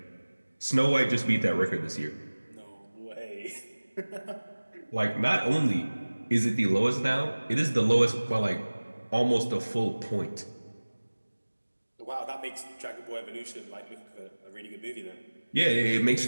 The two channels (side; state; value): both; inverted; correlation -1.00